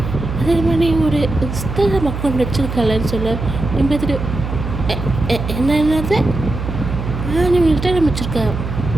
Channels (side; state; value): right; noise; hum, 6 dB below the sound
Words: அதே மாதிரி ஒரு இன்ஸ்டாகிராம் அக்கௌண்ட் வச்சுருக்காளன்னு சொல்ல. நீ பார்த்துட்டு என்னது நீ இன்ஸ்டாகிராம் வச்சுருக்க